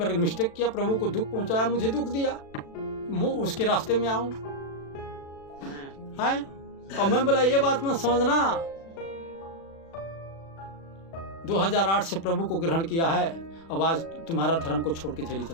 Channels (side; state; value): right; late; 36 ms